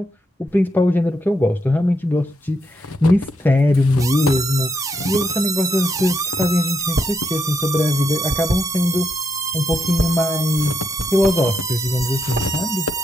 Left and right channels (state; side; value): normal; both; correlation 0.79